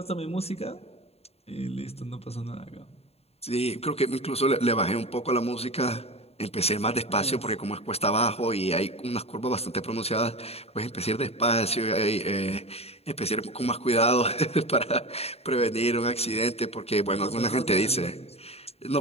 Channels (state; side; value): late; right; 0.30 ms